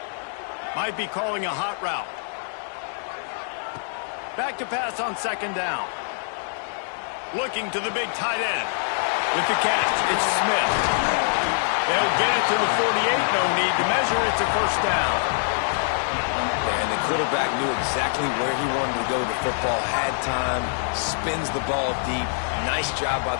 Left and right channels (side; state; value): right; silent; digital silence